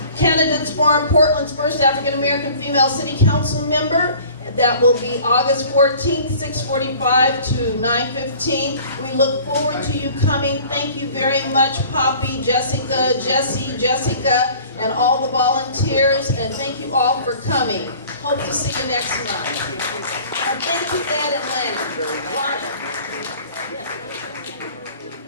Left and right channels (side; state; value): both; inverted; correlation -0.48